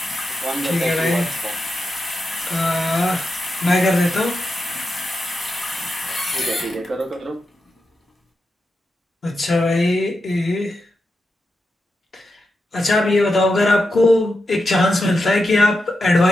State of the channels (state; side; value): normal; both; correlation 0.88